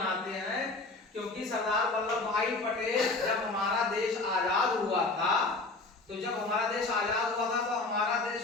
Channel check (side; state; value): right; quieter; 3.3 dB